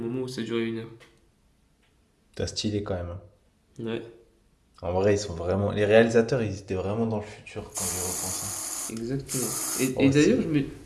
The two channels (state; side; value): identical; both; correlation 1.00